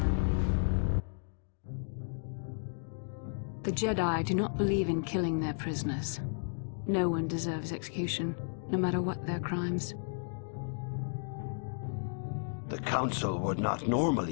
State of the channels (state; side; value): silent; right; digital silence